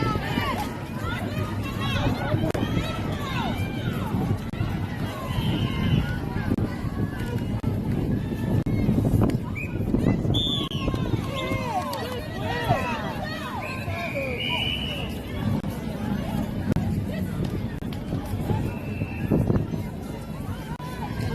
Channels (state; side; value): identical; both; correlation 1.00